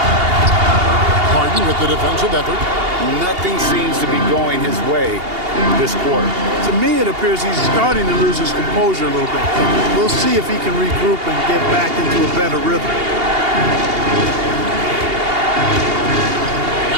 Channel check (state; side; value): late; left; 2.8 ms